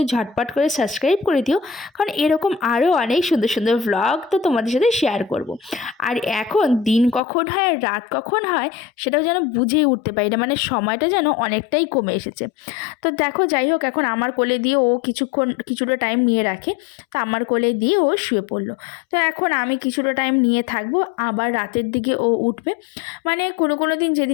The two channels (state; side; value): drops out; right; at 7.2 s